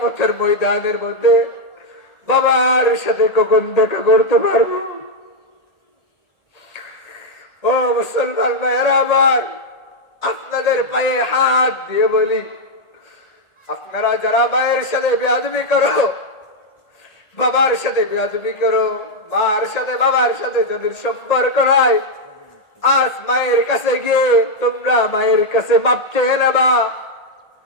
ময়দানের মধ্যে বাবার সাথে কখন দেখা করতে পারবো। ও মুসলমান ভাইয়েরা আমার, আপনাদের পায়ে হাত দিয়ে বলি, আপনারা যারা মায়ের সাথে বেয়াদবি করো, বাবার সাথে বেয়াদবি করো, মার সাথে বাবার সাথে যাদের সম্পর্ক নাই, আজ মায়ের কাছে গিয়ে তোমরা মায়ের কাছে মাপ চেয়ে নেবা।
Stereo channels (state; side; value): late; right; 1.8 ms